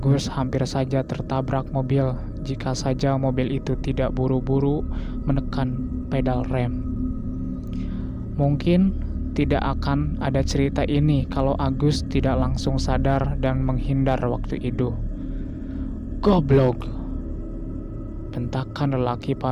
hampir saja tertabrak mobil jika saja mobil itu tidak buru-buru menekan pedal rem. Mungkin tidak akan ada cerita ini kalau Agus tidak langsung sadar dan menghindar waktu itu. Goblok! Bentakan lelaki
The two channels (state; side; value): identical; both; correlation 1.00